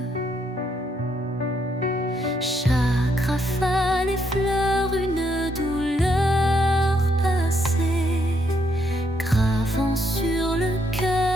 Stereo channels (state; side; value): normal; both; correlation 0.74